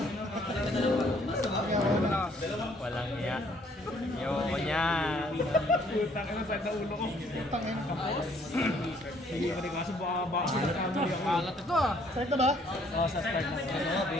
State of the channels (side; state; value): both; normal; correlation 0.63